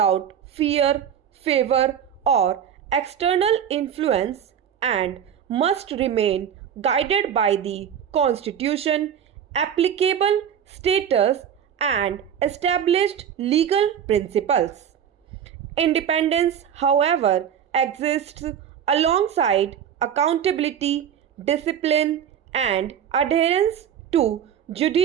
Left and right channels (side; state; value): left; quieter; 8.8 dB